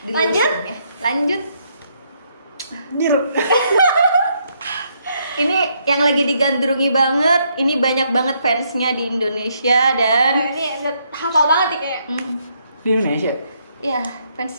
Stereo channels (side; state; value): both; inverted; correlation -0.73